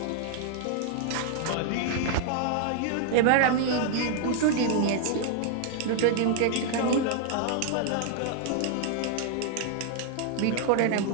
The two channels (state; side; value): different; both; correlation 0.00